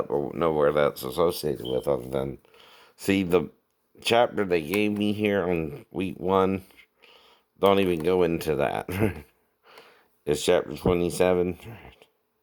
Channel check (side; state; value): both; identical; correlation 1.00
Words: or know where that's associated with, other than see the chapter they gave me here on week 1. Don't even go into that. It's chapter 27.